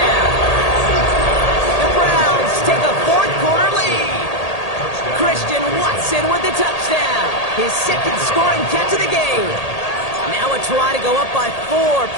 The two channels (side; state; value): right; late; 1.8 ms